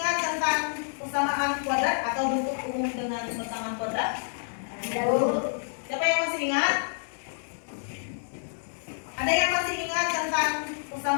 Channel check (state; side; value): silent; right; 59 dB below the other